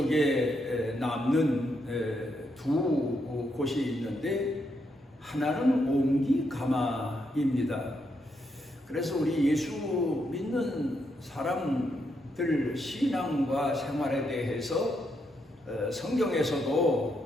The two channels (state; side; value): normal; both; correlation 0.79